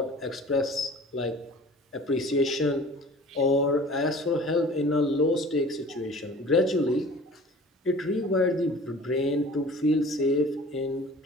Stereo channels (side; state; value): both; normal; correlation 0.44